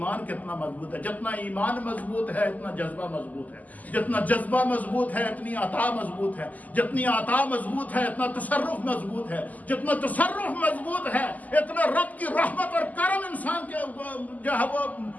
کتنا مضبوط ہے۔ جتنا ایمان مضبوط ہے اتنا جذبہ مضبوط ہے، جتنا جذبہ مضبوط ہے اتنی عطا مضبوط ہے، جتنی عطا مضبوط ہے اتنا تصرف مضبوط ہے، جتنا تصرف مضبوط ہے اتنا رب کی رحمت اور کرم انسان کے جو ہے وہ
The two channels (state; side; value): late; right; 0.079 ms